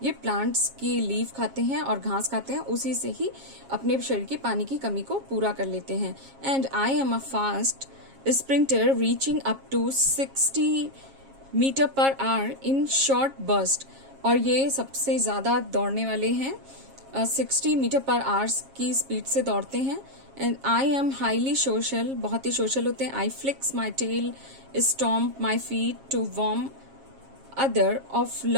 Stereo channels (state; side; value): late; left; 7.4 ms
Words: ये प्लांट्स की लीफ खाते हैं और घास खाते हैं, उसी से ही अपने शरीर की पानी की कमी को पूरा कर लेते हैं. And I am a fast sprinter reaching up to 60 metre per hour in short burst. और ये सबसे ज्यादा दौड़ने वाले हैं, 60 मीटर पर आवर्स की स्पीड से दौड़ते हैं. And I am highly social, बहुत ही सोशल होते हैं. I flicks my tail, stomp my feet to warn other of